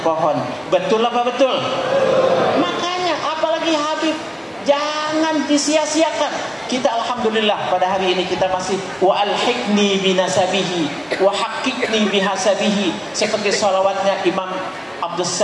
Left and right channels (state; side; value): identical; both; correlation 1.00